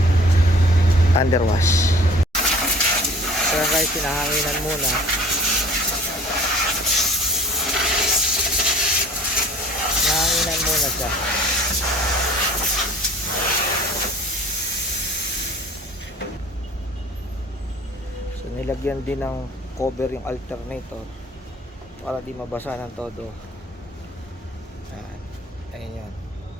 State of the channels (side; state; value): both; normal; correlation 0.48